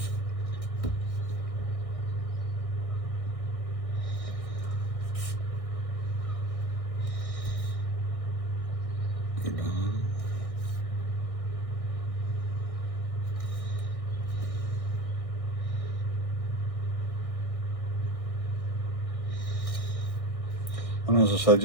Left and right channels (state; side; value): late; right; 1.6 ms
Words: And as I said,